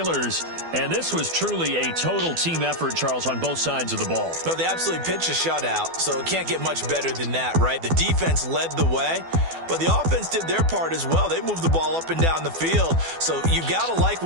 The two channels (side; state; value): left; late; 12 ms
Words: And this was truly a total team effort, Charles, on both sides of the ball. No, they absolutely pitched a shutout, so it can't get much better than that, right? The defense led the way, but the offense did their part as well. They moved the ball up and down the field. So you've got to like